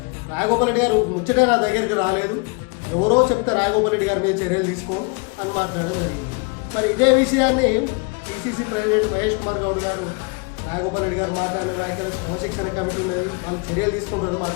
రాజగోపాల్ రెడ్డి గారు ముచ్చటే నా దగ్గరికి రాలేదు, ఎవరో చెప్తే రాజగోపాల్ రెడ్డి గారి మీద చర్యలు తీసుకో అని మాట్లాడడం జరిగింది. మరి ఇదే విషయాన్ని పిసిసి ప్రెసిడెంట్ మహేష్ కుమార్ గౌడ్ గారు రాజగోపాల్ రెడ్డి గారు మాట్లాడిన వ్యాఖ్యలు క్రమశిక్షణ కమిటీ ఉన్నది, వాళ్ళు చర్యలు తీసుకుంటారని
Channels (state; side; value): quieter; right; 32.1 dB